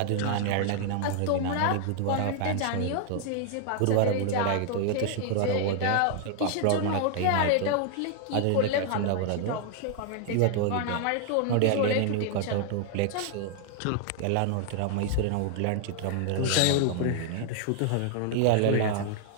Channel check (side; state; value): both; different; correlation 0.00